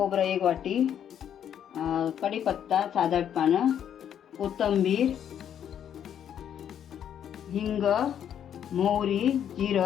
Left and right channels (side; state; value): right; quieter; 9.4 dB